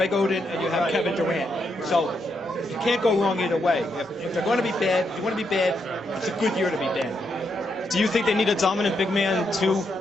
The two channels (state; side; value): normal; both; correlation 0.80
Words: Oden and you have Kevin Durant. So you can't go wrong either way. If they're going to be bad, if you want to be bad, it's a good year to be bad. Do you think they need a dominant big man to